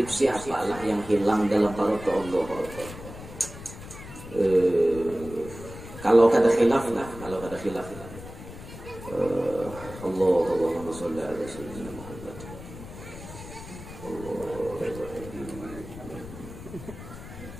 siapalah yang hilang dalam parut Allah. Kalau kata khilaf lah, Allahumma sholli ala sayyidina Muhammad.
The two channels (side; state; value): left; noise; rumble, 14 dB below the sound